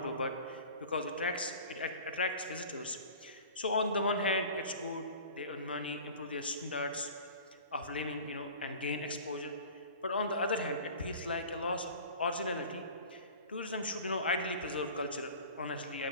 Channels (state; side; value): inverted; both; correlation -0.41